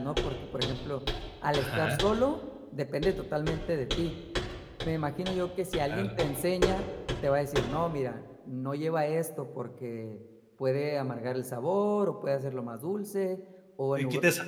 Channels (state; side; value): identical; both; correlation 1.00